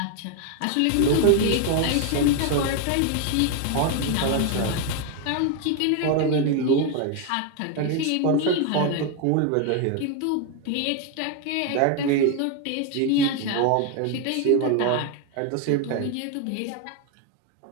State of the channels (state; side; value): different; both; correlation 0.01